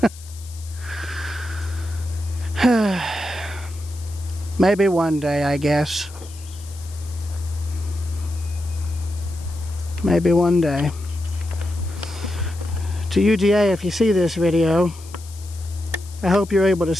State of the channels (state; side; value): noise; left; hiss, 19 dB below the sound